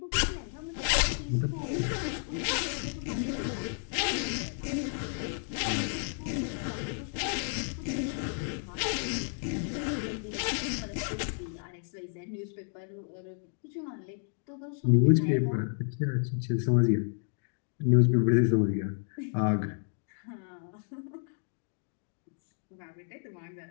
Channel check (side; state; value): right; silent; 57 dB below the other